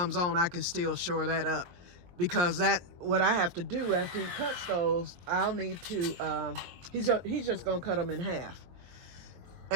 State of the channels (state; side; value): late; left; 23 ms